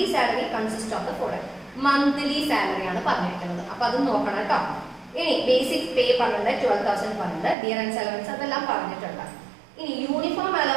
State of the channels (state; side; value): drops out; left; at 7.6 s